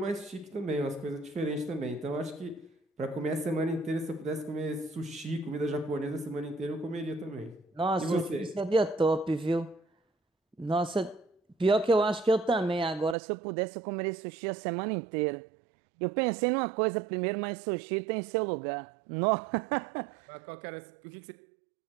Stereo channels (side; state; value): left; drops out; at 13.2 s